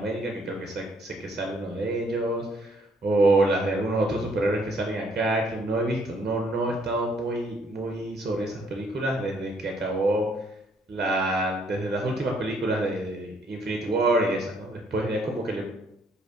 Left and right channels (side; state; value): both; normal; correlation 0.67